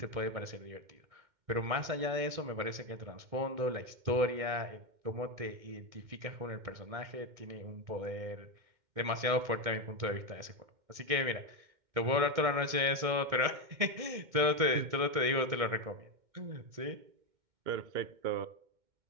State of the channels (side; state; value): left; late; 2.1 ms